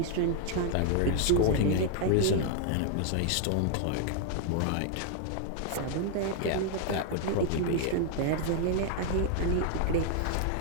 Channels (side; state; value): both; different; correlation 0.00